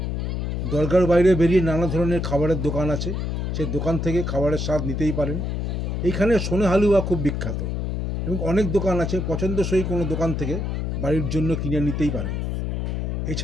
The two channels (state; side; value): noise; left; hum, 1 dB below the sound